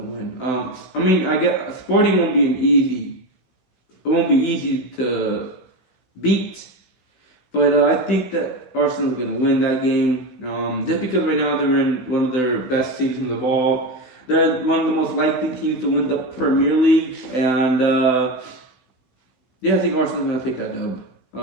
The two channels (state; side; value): late; right; 16 ms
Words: win. I mean, I get Sporting won't be it won't be easy to beat, but I think that Arsenal's gonna win that game. Just because right now they're in one of their best seasons of all. They're one of the most likely teams to win the Premier League, and yeah, I think Arsenal's gonna take that dub.